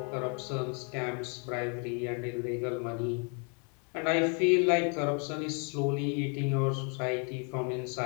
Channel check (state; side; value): quieter; right; 37.7 dB